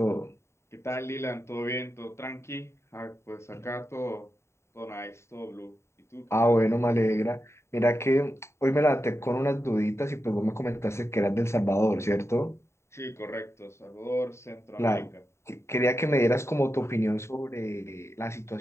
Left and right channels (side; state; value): right; late; 0.13 ms